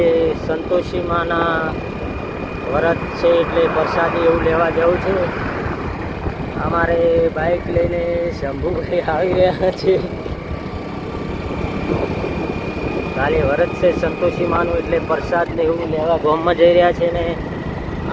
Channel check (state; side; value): identical; both; correlation 1.00